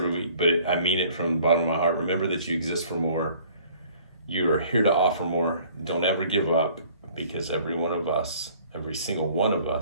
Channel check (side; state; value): both; inverted; correlation -0.54